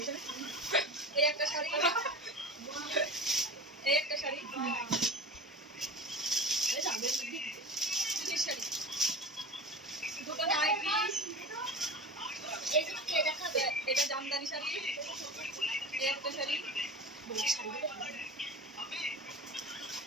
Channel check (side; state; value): both; normal; correlation 0.32